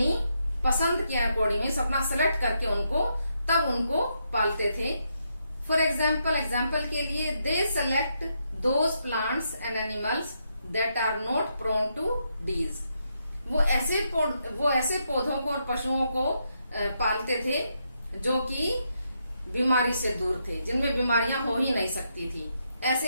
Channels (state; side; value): inverted; both; correlation -0.80